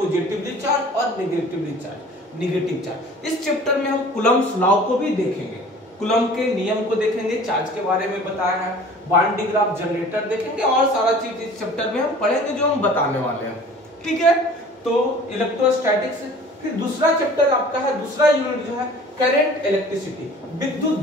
चार्ज और नेगेटिव चार्ज। इस चैप्टर में हम कूलम्ब्स लॉ को भी देखेंगे, कूलम्ब के नियम को देखेंगे, चार्ज के बारे में बताया है, बांड डिग्राफ, जनरेटर देखेंगे, और सारा चीज इस चैप्टर में हम पढ़ेंगे जो हम बताने वाले हैं, ठीक है। तो इलेक्ट्रोस्टैटिक्स। फिर दूसरा चैप्टर आपका है, दूसरा यूनिट जो है करंट इलेक्ट्रिसिटी, विद्युत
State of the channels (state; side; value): normal; both; correlation 0.46